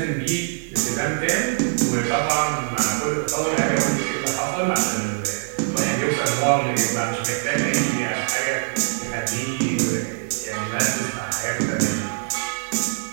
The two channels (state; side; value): silent; left; 63 dB below the other